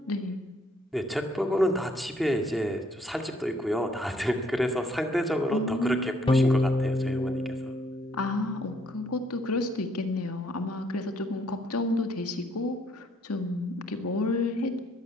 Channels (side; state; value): both; normal; correlation 0.67